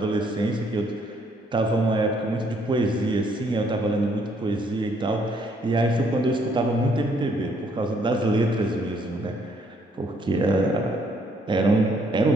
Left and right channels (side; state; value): both; normal; correlation 0.68